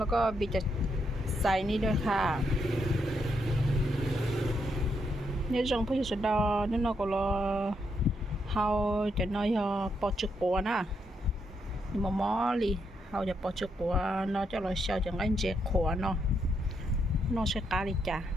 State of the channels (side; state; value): both; normal; correlation 0.79